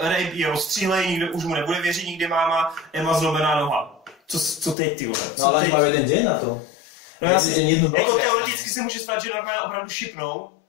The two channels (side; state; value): right; drops out; at 4.8 s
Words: je rozstřílej, nikdo už mu nebude věřit, nikdy máma, Emma zlomená noha. Co teď, ty vole? No ale majú jeden deň na to. No jasně, jako teoreticky se může stát, že Norman opravdu šipnou